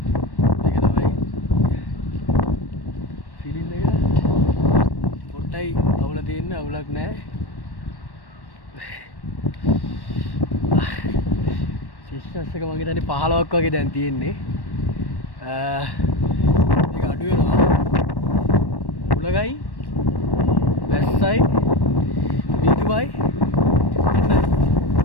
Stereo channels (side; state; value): right; late; 1.1 ms